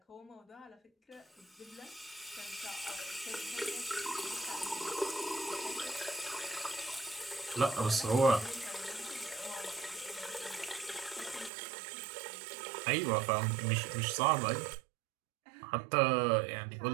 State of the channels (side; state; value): left; drops out; at 11.5 s